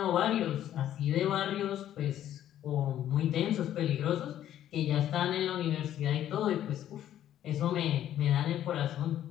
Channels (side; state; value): right; quieter; 11.6 dB